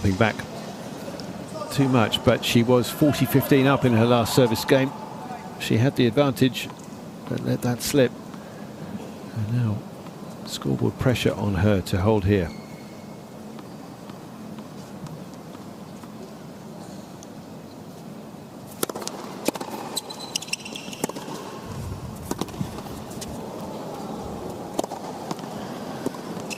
back too much, but she was 40-15 up in her last service game. She had the advantage, but let that slip. And now scoreboard pressure on her to hold here.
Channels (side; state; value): both; identical; correlation 1.00